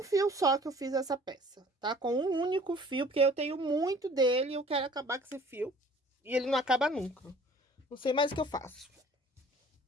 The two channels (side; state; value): both; normal; correlation 0.51